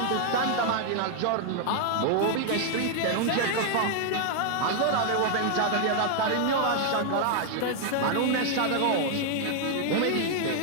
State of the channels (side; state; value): both; different; correlation 0.00